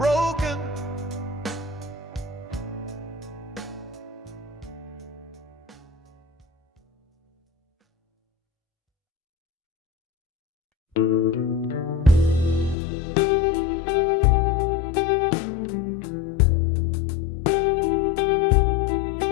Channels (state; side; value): drops out; right; at 12.8 s